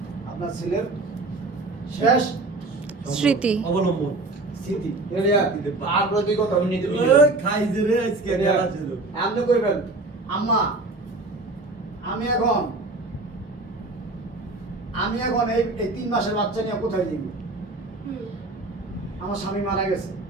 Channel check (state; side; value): quieter; left; 3.1 dB